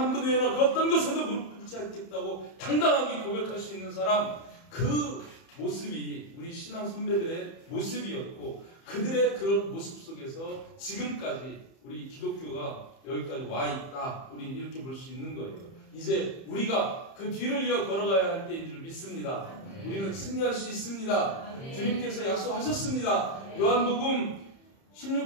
분 외에는 어떤 것에도 무릎 꿇지 않겠다고 당당하게 고백할 수 있는 사람, 그 모습이 우리 신앙 선배들의 모습이었고 그들의 그런 모습 속에서 지금까지 우리 기독교가 여기까지 와 있다. 우리 이렇게 볼 수 있는 거예요. 이제 우리가 그 뒤를 이어 걸어가야 할 때인 줄 믿습니다. 우리는 승리할 수 있습니다. 주님께서 약속하셨습니다. 요한복음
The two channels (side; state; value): right; late; 30 ms